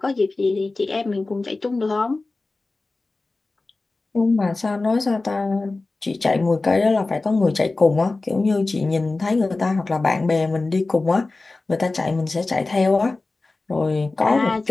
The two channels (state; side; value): quieter; right; 3.4 dB